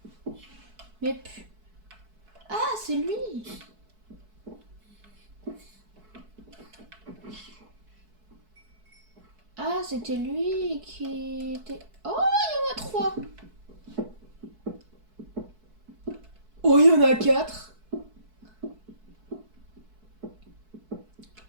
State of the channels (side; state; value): left; late; 4.6 ms